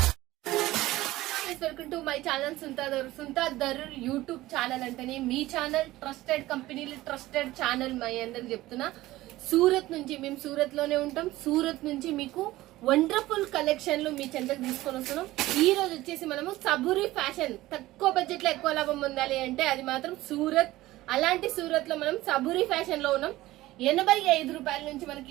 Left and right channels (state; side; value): quieter; left; 17.1 dB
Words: Welcome to my channel Sunitha Darur YouTube channel అంటేనే మీ ఛానల్, ట్రస్టెడ్ కంపెనీలు, ట్రస్టెడ్ ఛానల్. మై అందరికి చెప్తున్నా, సూరత్ నుంచి మేము సూరత్ లోనే ఉంటాం. సూరత్ నుంచి మీకు వండర్ఫుల్ కలెక్షన్లు మీ చెంతకు తీసుకొని వస్తున్నాం. ఈ రోజు వచ్చేసి మనము సబూరి ఫ్యాషన్, తక్కువ బడ్జెట్ లో ఎక్కువ లాభం పొందాలి అంటే అది మాత్రం సూరత్. అలాంటి సూరత్ లో మనం సబూరి ఫ్యాషన్ లో ఉన్నాం. 85 రూపాయల నుంచి